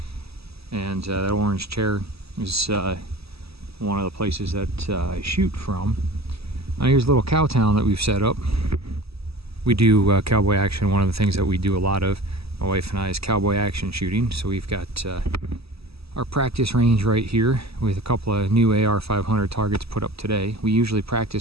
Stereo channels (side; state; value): left; late; 0.78 ms